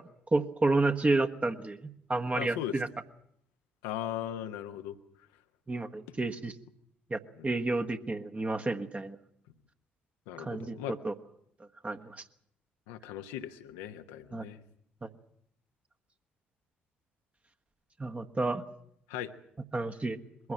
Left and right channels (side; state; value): both; normal; correlation 0.84